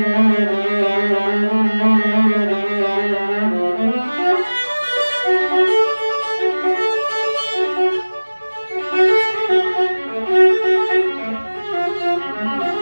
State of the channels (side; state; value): both; inverted; correlation -1.00